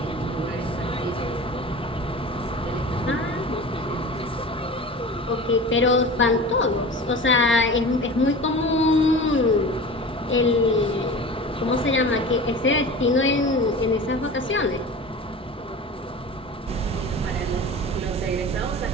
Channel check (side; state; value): both; normal; correlation 0.35